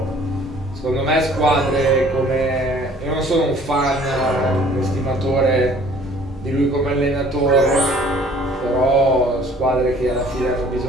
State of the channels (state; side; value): normal; both; correlation 0.54